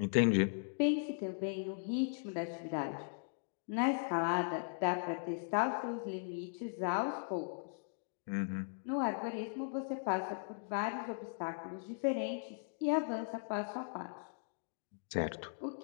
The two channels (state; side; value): silent; right; digital silence